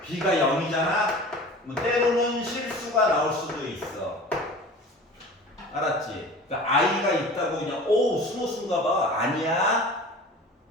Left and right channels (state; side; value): normal; both; correlation 0.40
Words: B가 0이잖아? 뭐 때로는 실수가 나올 수도 있어. 알았지? 그러니까 I가 있다고 그냥 순호수인가 봐. 아니야.